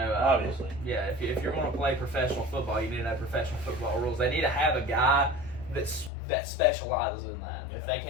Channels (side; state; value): right; drops out; at 6.1 s